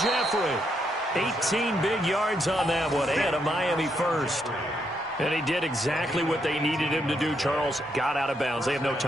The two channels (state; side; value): normal; both; correlation 0.77